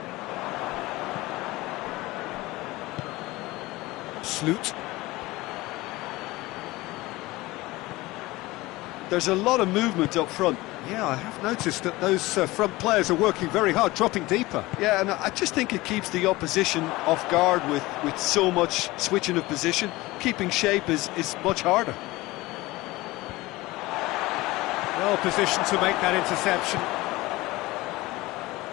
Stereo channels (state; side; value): quieter; right; 20.0 dB